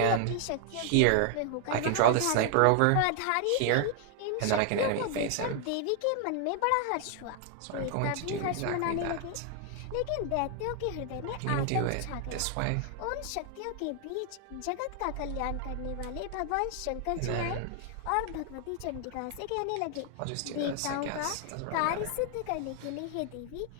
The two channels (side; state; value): both; different; correlation 0.00